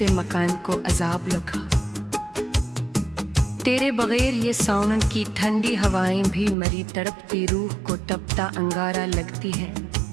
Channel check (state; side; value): drops out; left; at 6.6 s